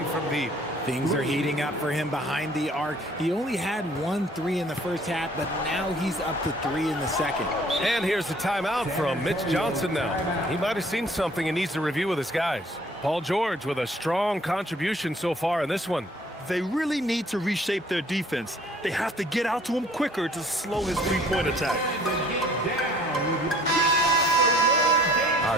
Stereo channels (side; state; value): both; normal; correlation 0.56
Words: from deep. Things are heating up for him behind the arc. He only had 1 3 in the first half, but now he's up to 3 in the second. And here's the timeout from Mitch Johnson now. He might have seen something and needs to review with his guys. Paul George with a strong contribution so far in this one. They really need to reshape their defense. They have to get out to him quicker to slow his three-point attack.